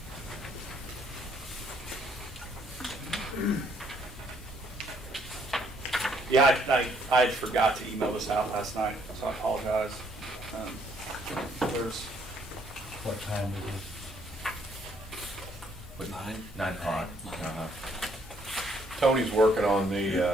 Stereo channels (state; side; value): normal; both; correlation 0.67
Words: Yeah, I forgot to email this out last night, so I apologize. There's, What time is it? What, 9? 9 o'clock. Uh-huh. Tony's working on